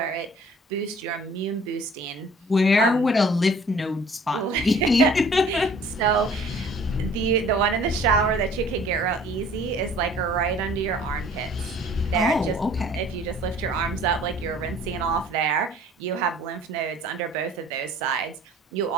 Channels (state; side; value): normal; both; correlation 0.51